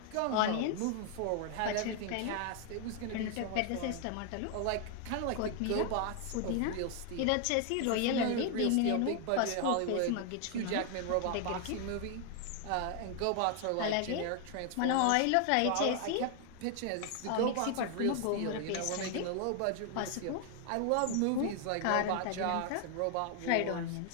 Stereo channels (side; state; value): both; different; correlation 0.00